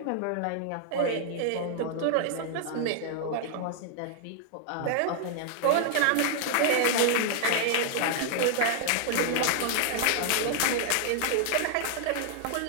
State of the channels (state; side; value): different; both; correlation 0.00